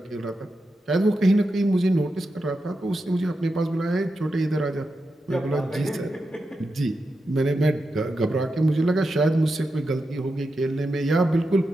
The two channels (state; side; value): normal; both; correlation 0.88